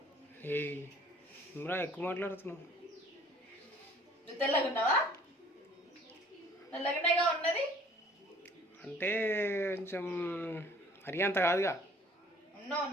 ఇమ్రా ఎక్కువ మాట్లాడుతున్నావు. నువ్వు తెల్లగా ఉన్నావా? తెల్లగానేగా ఉన్నది అంటే కొంచెం మరీ అంత కాదుగా. ఉన్నావు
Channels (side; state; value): both; normal; correlation 0.54